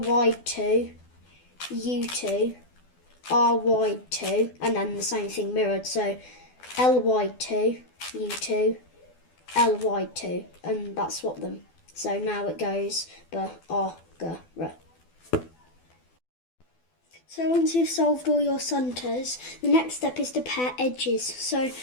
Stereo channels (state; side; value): late; right; 12 ms